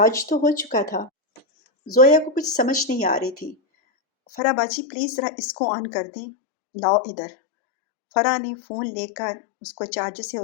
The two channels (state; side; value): drops out; right; at 4.4 s